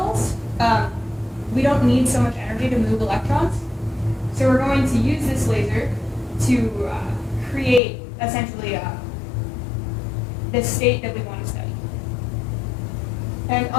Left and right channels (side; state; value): right; drops out; at 7.8 s